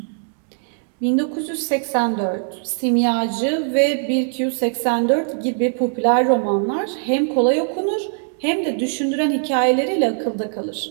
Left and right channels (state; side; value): silent; left; 65 dB below the other